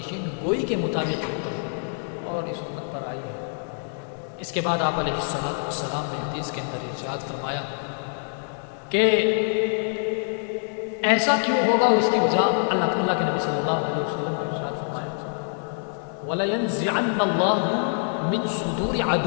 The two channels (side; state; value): right; silent; 61 dB below the other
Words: گوئی کے مطابق اور اس امت پر آئی ہے۔ اس کے بعد آپ علیہ السلام نے حدیث کے اندر ارشاد فرمایا کہ ایسا کیوں ہوگا، اس کی وجہ اللہ کے نبی صلی اللہ علیہ وسلم نے ارشاد فرمایا وَلَيَنزِعَنَّ اللَّهُ مِن صُدُورِ